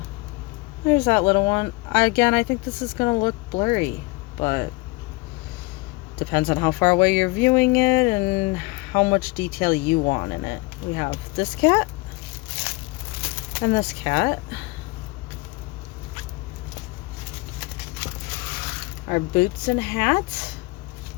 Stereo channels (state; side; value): quieter; right; 23.8 dB